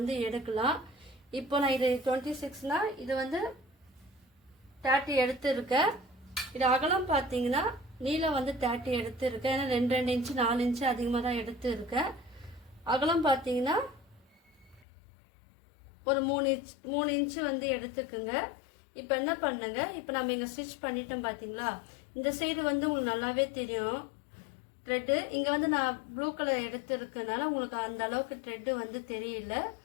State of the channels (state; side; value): drops out; right; at 14.9 s